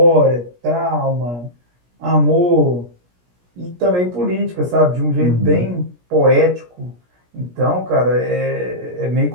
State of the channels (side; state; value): left; late; 17 ms